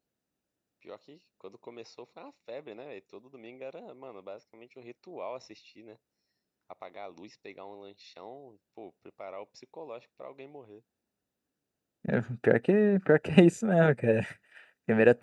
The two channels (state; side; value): identical; both; correlation 1.00